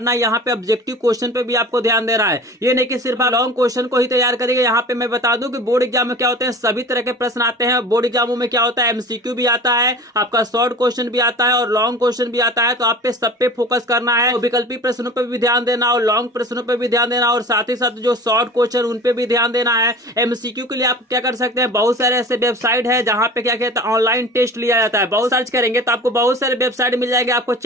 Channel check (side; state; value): both; normal; correlation 0.39